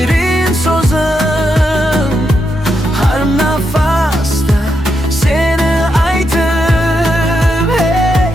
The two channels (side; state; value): both; normal; correlation 0.83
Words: so'zim, har nafasda seni aytib. Hey